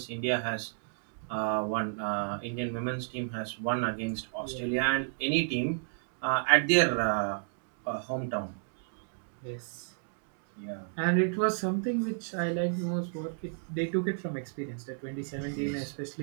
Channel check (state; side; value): silent; left; digital silence